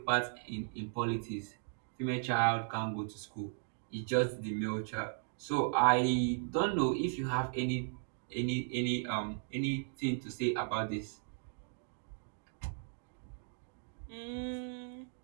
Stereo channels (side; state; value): left; silent; digital silence